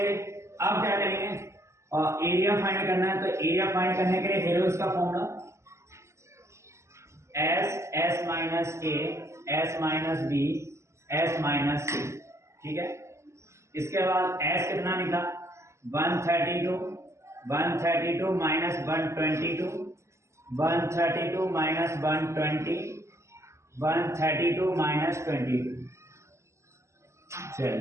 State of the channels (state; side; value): late; left; 0.13 ms